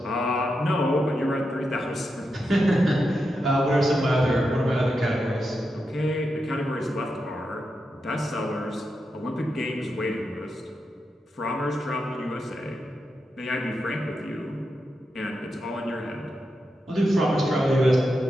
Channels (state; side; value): normal; both; correlation 0.87